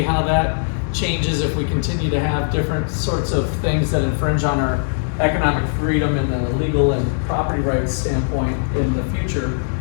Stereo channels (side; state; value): right; silent; digital silence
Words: how that changes if we continue to have different sorts of things that infringe on our economic freedom and the legal and property rights standpoint in the future.